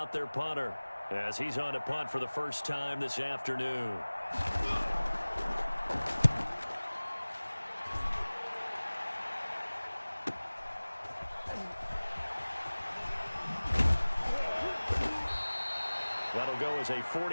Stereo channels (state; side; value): inverted; both; correlation -1.00